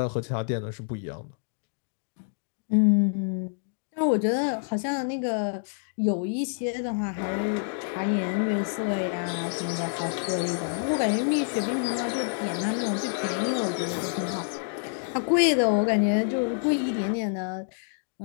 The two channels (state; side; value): silent; right; digital silence